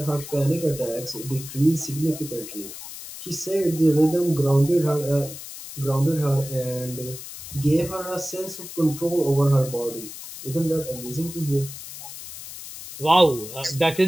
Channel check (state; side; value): noise; left; hiss, 12 dB below the sound